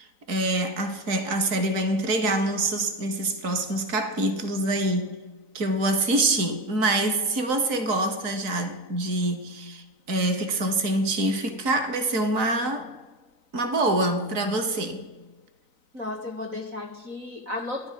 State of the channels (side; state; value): left; late; 3.9 ms